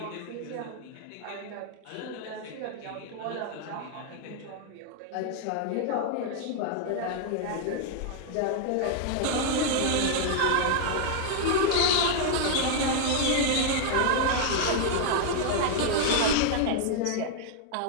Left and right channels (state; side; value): different; both; correlation 0.00